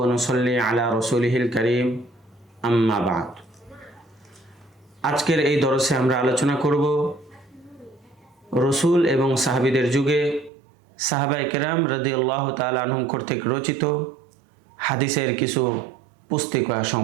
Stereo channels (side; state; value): left; drops out; at 10.5 s